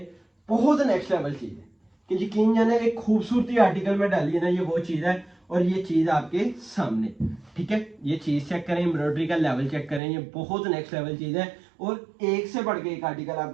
बहुत नेक्स्ट लेवल चीज है कि यकीन जाने एक खूबसूरती आर्टिकल में डाली है ना, ये वो चीज है। और ये चीज आपके सामने, ठीक है, ये चीज चेक करें, एम्ब्रॉयडरी का लेवल चेक करें, ये बहुत नेक्स्ट लेवल चीज है। और एक से बढ़ के एक आर्टिकल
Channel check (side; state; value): left; drops out; at 10.0 s